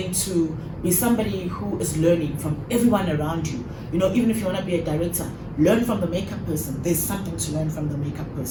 to be somebody who is learning from everyone around you. You know, even if you want to be a director, learn from the makeup person. There's something to learn from the makeup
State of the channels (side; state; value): both; identical; correlation 1.00